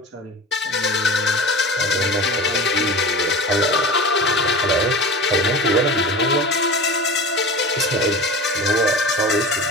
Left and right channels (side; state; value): both; normal; correlation 0.33